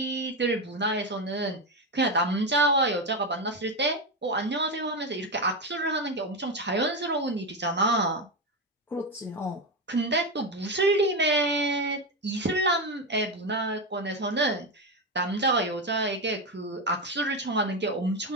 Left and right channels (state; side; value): normal; both; correlation 0.12